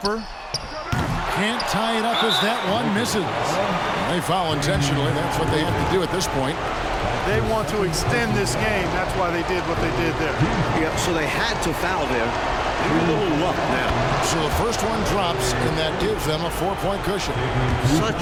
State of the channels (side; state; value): both; identical; correlation 1.00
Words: Can't tie it up as that one misses. They foul intentionally. That's what they have to do at this point. They want to extend this game. That's why they did what they did there. Yeah, so they had to foul there. A little luck now. So the first one drops, and that gives them a 4-point cushion.